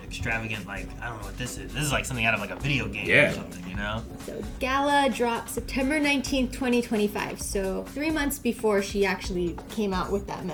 extravagant, like I don't know what this is. This is like something out of like a video game Yeah. or something, you know? So Gala dropped September 19th, 2025. So 3 months before she actually came out with that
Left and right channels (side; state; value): both; identical; correlation 1.00